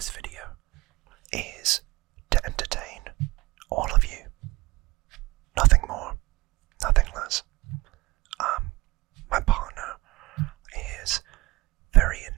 video is to entertain all of you. Nothing more, nothing less. My partner is very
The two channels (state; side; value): quieter; left; 21.2 dB